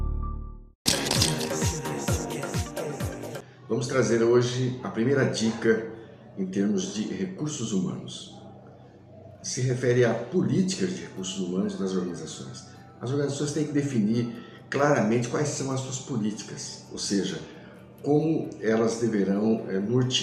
Vamos trazer hoje a primeira dica em termos de recursos humanos. Se refere a políticas de recursos humanos das organizações. As organizações têm que definir claramente quais são as suas políticas, ou seja, como elas deverão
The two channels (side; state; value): both; identical; correlation 1.00